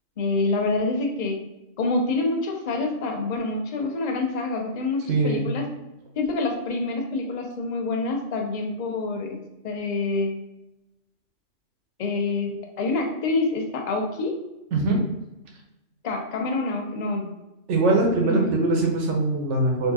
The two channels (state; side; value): late; left; 3.4 ms